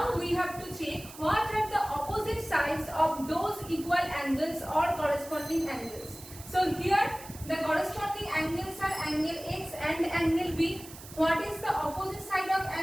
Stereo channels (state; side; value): noise; right; hiss, 16 dB below the sound